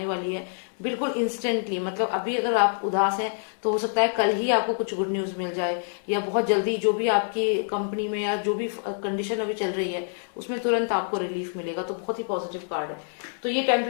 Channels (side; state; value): right; silent; 59 dB below the other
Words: वाली है, बिल्कुल इंस्टेंटली। मतलब अभी अगर आप उदास हैं तो हो सकता है कल ही आपको कुछ गुड न्यूज मिल जाए, या बहुत जल्दी जो भी आपकी कंपनी में या जो भी कंडीशन अभी चल रही है उसमें तुरंत आपको रिलीफ मिलेगा। तो बहुत ही पॉजिटिव कार्ड है। तो ये